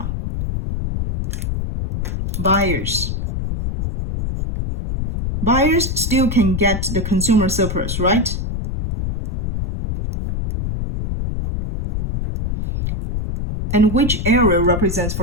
Buyers. Buyers still can get the consumer surplus, right? And which area represents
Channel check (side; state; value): left; noise; rumble, 3 dB below the sound